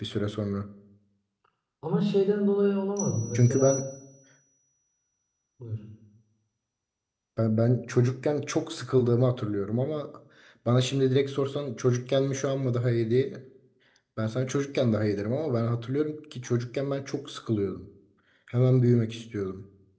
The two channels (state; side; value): identical; both; correlation 1.00